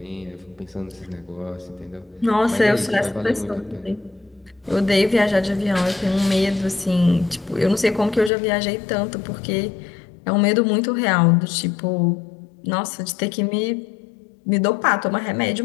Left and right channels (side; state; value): right; drops out; at 8.3 s